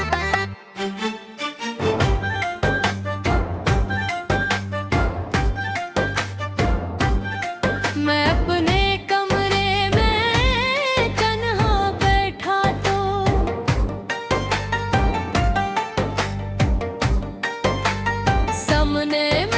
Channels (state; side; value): identical; both; correlation 1.00